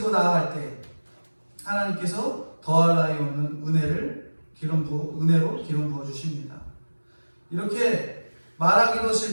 나아갈 때 하나님께서 더할 나위 없는 은혜로 기름 부어 주십니다. 이렇게 말하기도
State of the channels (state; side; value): inverted; both; correlation -1.00